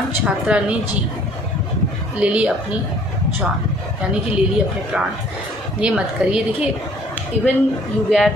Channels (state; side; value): normal; both; correlation 0.57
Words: छात्रा ने ले ली अपनी जान, यानी कि ले ली अपने प्राण। ये मत करिए। देखिए, even you